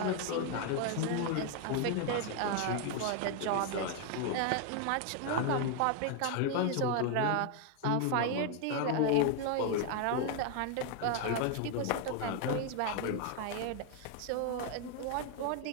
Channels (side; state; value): both; different; correlation 0.00